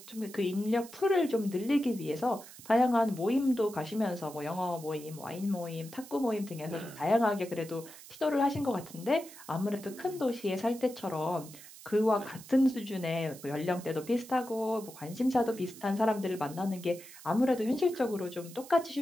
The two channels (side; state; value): right; noise; hiss, 17 dB below the sound